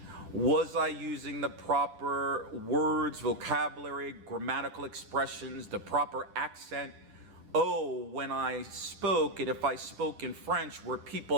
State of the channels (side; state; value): left; late; 10 ms